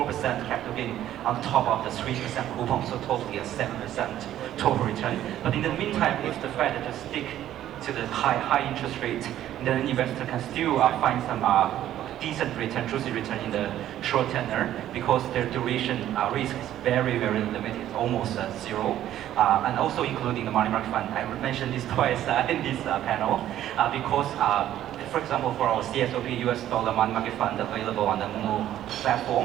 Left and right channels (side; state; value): left; quieter; 12.2 dB